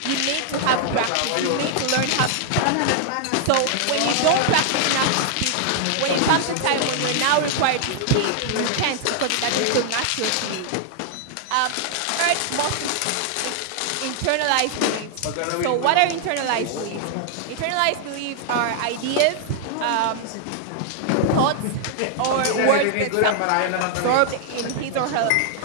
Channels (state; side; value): different; both; correlation 0.00